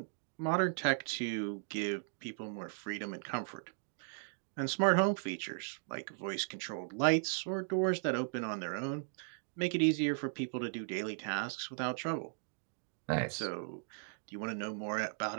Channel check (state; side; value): silent; left; digital silence